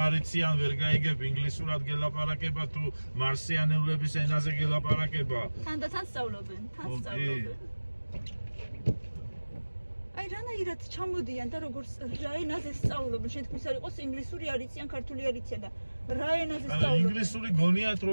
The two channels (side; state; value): both; inverted; correlation -1.00